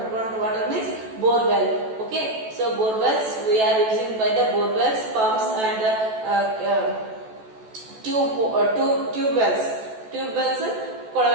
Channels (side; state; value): left; late; 14 ms